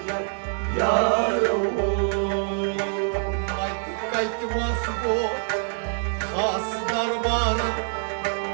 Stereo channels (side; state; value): left; silent; 59 dB below the other